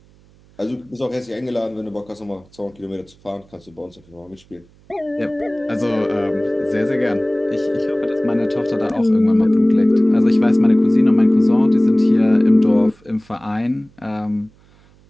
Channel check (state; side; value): noise; right; hum, 29 dB below the sound